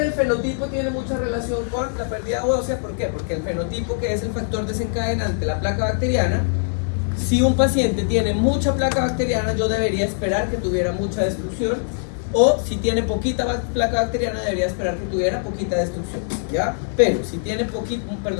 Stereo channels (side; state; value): right; silent; 64 dB below the other